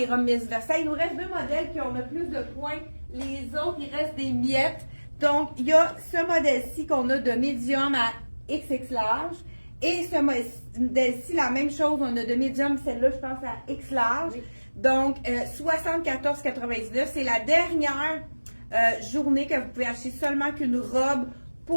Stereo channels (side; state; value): both; inverted; correlation -1.00